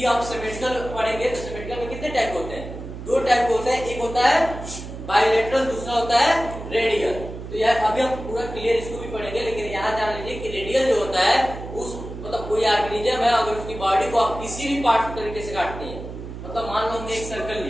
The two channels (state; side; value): noise; right; hum, 10 dB below the sound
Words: आप सिमेट्रिकल पढ़ेंगे तो सिमेट्रिकल में कितने टाइप होते हैं, दो टाइप होते हैं, एक होता है बाइलेटरल, दूसरा होता है रेडियल। तो यार अभी हम पूरा क्लियर इसको भी पढ़ेंगे, लेकिन यहाँ जान लीजिए कि रेडियल जो होता है उस मतलब कोई ऑर्गेनिज्म है, अगर उसकी बॉडी को आप किसी भी पार्ट तरीके से काटते हैं, मतलब मान लो हमने एक सर्कल